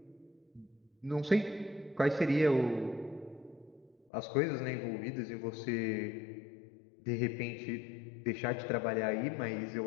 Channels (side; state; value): right; drops out; at 4.0 s